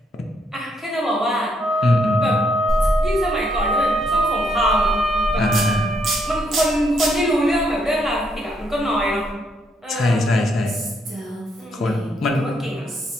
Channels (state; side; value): normal; both; correlation 0.74